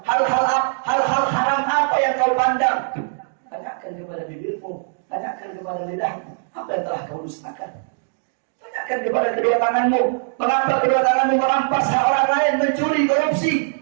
Hal-hal haram apa yang kau pandang? Tanyakan kepada bibirmu. Tanyakan kepada lidahmu. Apa yang telah kau dustakan? Tanyakan kepada kedua tanganmu. Mengapa kedua tanganmu merampas hak orang lain, mencuri, korupsi?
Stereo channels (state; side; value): silent; left; digital silence